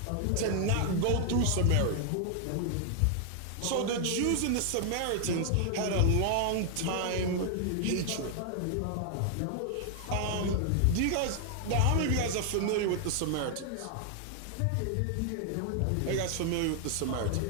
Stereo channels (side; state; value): both; different; correlation 0.00